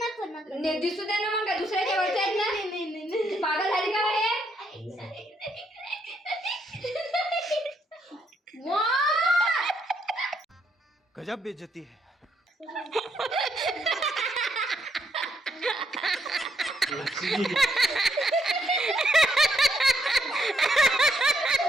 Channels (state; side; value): normal; both; correlation 0.75